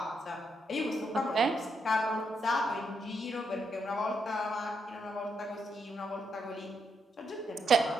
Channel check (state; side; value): normal; both; correlation 0.79